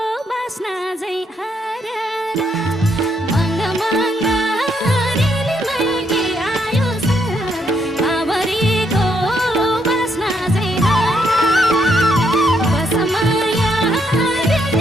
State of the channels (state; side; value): normal; both; correlation 0.75